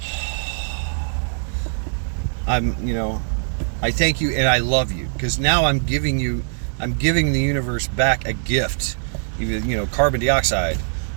you know, I thank you and I love you, because now I'm giving the universe back a gift. Even, you know, carbon dioxide.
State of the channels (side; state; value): left; silent; digital silence